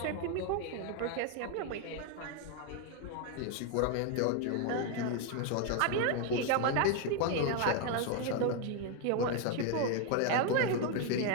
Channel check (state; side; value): different; both; correlation 0.01